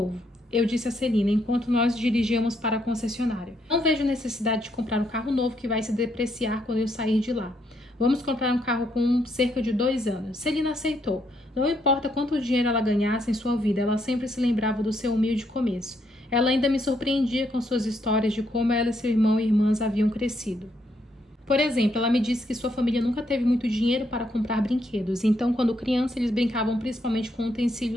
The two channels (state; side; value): normal; both; correlation 0.75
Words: eu disse a Celina enquanto nós dirigíamos para a concessionária. Não vejo necessidade de comprar um carro novo que vai se depreciar quando eu sair de lá. Vamos comprar um carro com cerca de 2 anos. Celina aceitou. Não importa quanto dinheiro ela ganhasse em sua vida, ela sempre se lembrava do seu humilde começo. Ela ainda me surpreendia com suas histórias de como ela e seu irmão e irmãs haviam crescido. Por exemplo, ela me disse que sua família nunca teve muito dinheiro para comprar brinquedos, então quando criança eles brincavam principalmente com